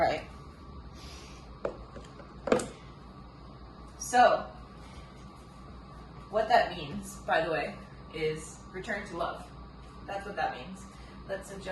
So, what that means, by the way, is return to love. That's what that means. Let's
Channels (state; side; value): identical; both; correlation 1.00